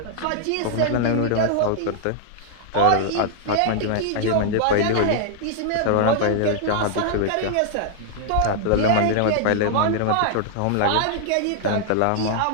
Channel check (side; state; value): both; different; correlation -0.01